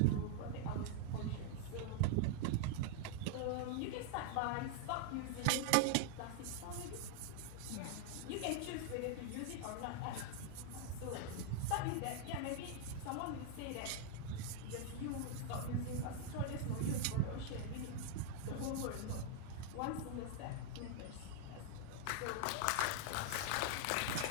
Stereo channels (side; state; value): both; different; correlation 0.00